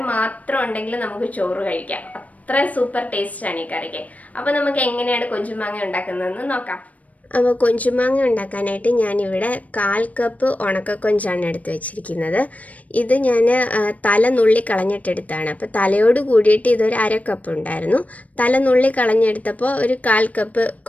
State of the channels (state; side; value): late; right; 0.070 ms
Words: മാത്രം ഉണ്ടെങ്കിൽ നമുക്ക് ചോറ് കഴിക്കാം. അത്ര സൂപ്പർ ടേസ്റ്റാണ് ഈ കറിക്ക്. അപ്പോൾ നമുക്ക് എങ്ങനെയാണ് കൊഞ്ചുമാങ്ങ ഉണ്ടാക്കുന്നതെന്ന് നോക്കാം. അപ്പോൾ കൊഞ്ചുമാങ്ങ ഉണ്ടാക്കാനായിട്ട് ഞാനിവിടെ 1/4 കപ്പ് ഉണക്കക്കൊഞ്ചാണ് എടുത്ത് വെച്ചിരിക്കുന്നത്. ഇത് ഞാൻ തല നുള്ളി കളഞ്ഞിട്ടെടുത്താണ്. അപ്പോൾ തലയോട് കൂടിയിട്ട് ഇതൊരു 1/2 കപ്പ് ഉണ്ടായിരുന്നു. തല നുള്ളി കളഞ്ഞെടുത്തപ്പോൾ ഒരു 1/4 കപ്പ്